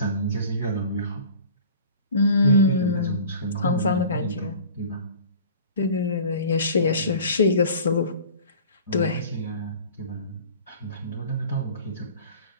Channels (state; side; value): inverted; both; correlation -0.43